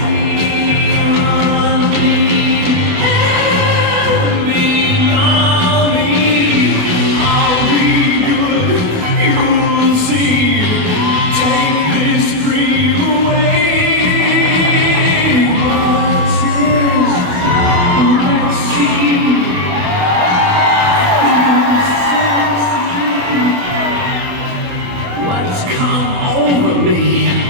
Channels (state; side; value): late; left; 28 ms